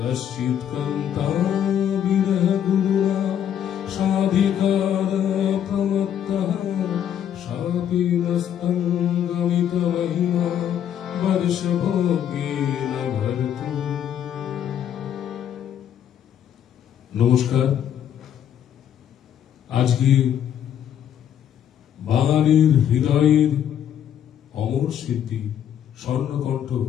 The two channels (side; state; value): right; quieter; 9.7 dB